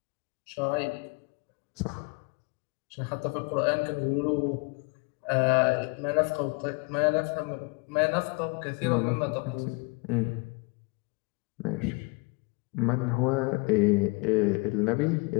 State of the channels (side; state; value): right; quieter; 29.6 dB